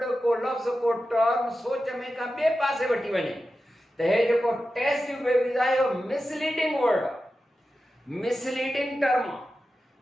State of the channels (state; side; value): normal; both; correlation 0.92